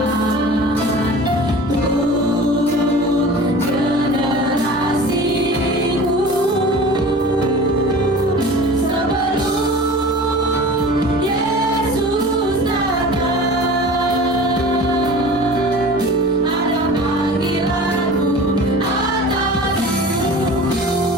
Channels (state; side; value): normal; both; correlation 0.39